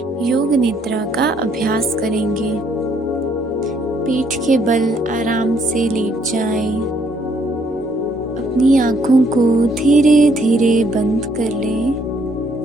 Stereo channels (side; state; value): both; normal; correlation 0.68